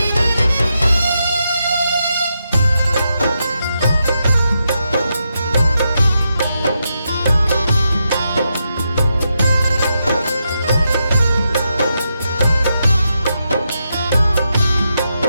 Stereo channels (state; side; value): inverted; both; correlation -0.84